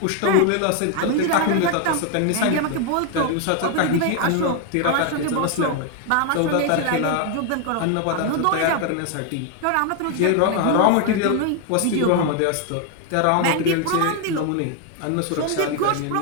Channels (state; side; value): different; both; correlation 0.01